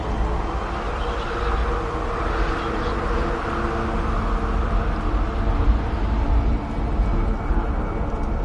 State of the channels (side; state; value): both; identical; correlation 1.00